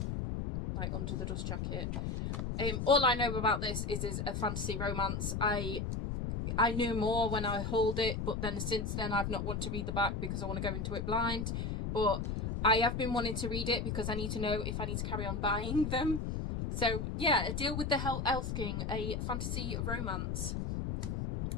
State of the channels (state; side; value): noise; left; rumble, 2 dB below the sound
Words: like Under the Dust Jacket. All I know about this is a fantasy romance. I knew more when I hold it, but then since then I've not wanted to read the back because I want to go into it blind. But I have been wanting to read it because I need to know if I need to carry on buying them. So yeah, A Deal with the Elf King, a fantasy romance.